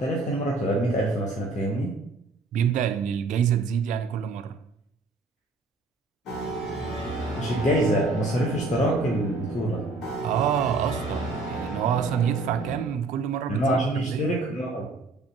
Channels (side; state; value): left; quieter; 3.4 dB